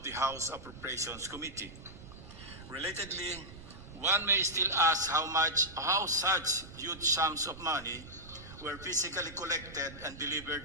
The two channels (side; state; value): right; noise; rumble, 16 dB below the sound